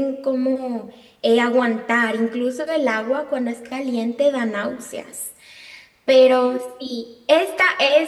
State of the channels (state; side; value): identical; both; correlation 1.00